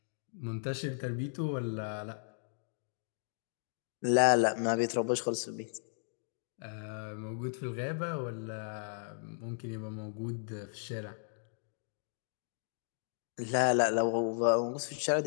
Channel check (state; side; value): silent; right; digital silence